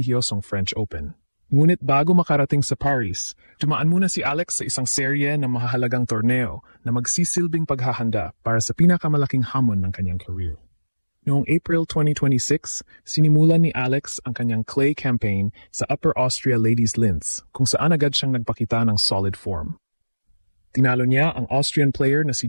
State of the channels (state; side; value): inverted; both; correlation -1.00